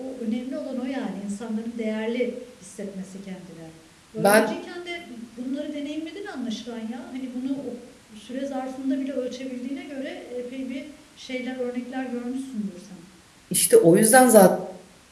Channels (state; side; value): identical; both; correlation 1.00